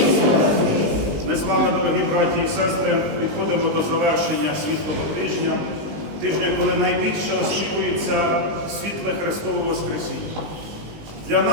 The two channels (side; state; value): left; late; 20 ms